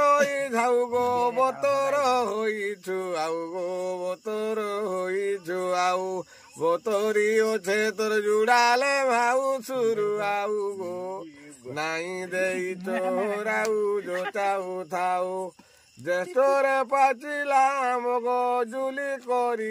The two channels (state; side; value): identical; both; correlation 1.00